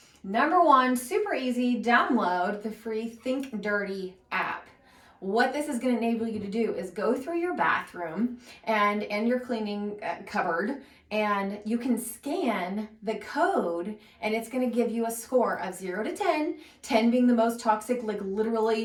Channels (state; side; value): identical; both; correlation 1.00